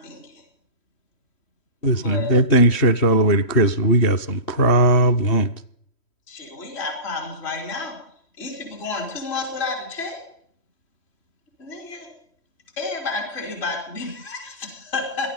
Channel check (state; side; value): late; right; 3.1 ms